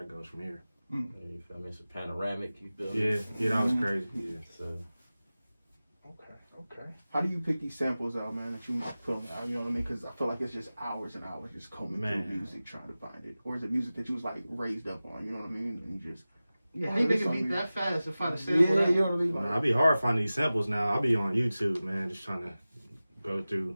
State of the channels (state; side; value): inverted; both; correlation -0.96